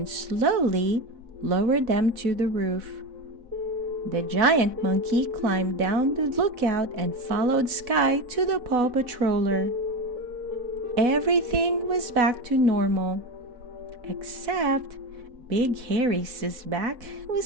slowly lowered them to the roof. The giant monkey climbed down the lookout and followed Skye to the Paw Patroller. Everything was back to normal, except Big Harry's back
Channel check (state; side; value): late; left; 4.1 ms